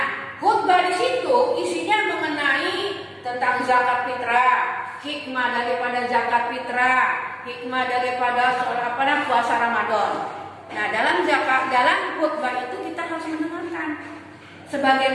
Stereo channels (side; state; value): both; identical; correlation 1.00